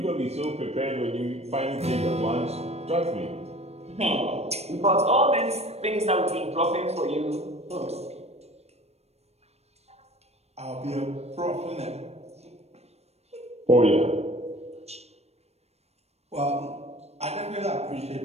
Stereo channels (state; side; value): late; left; 0.31 ms